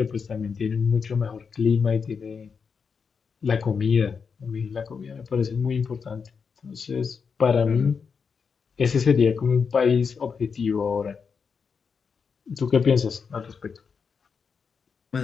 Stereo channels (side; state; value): right; quieter; 5.8 dB